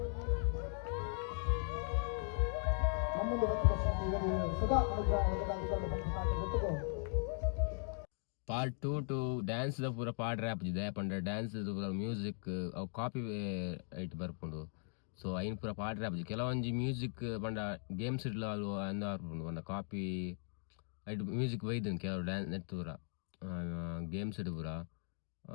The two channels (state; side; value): silent; right; 52 dB below the other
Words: ಪಾರ್ಟ್ 2 ಟು ಡ್ಯಾನ್ಸ್ ದ ಪೂರ ಪಾಡ್ ರ್ಯಾಪ್ ಇದೆ ಪಂಡ ಡ್ಯಾನ್ಸ್ ಪೂರ ಮ್ಯೂಸಿಕ್ ಅವು ಕಾಪಿ ಐಟ್ ಬರ್ಪುಂಡು ಸೊ ಐನ್ ಪೂರ ಪಾಡ್ ರ್ಯಾಪ್ ಕೆಲವೊಂಜಿ ಮ್ಯೂಸಿಕ್ ಪಂಡ ಗೇಮ್ಸ್ ಇಡ್ಲ ಅಂದ ಬರ್ಪುಂಡು ಪಂಡ ಕಾಪಿ ಐಟ್ ಮ್ಯೂಸಿಕ್ ಒಯ್ದು ಕೆಲವು ಡ್ಯಾನ್ಸ್ ನೆತ್ತು ಪೂರ ಗೇಮ್ಸ್ ಇಡು ಪೂರ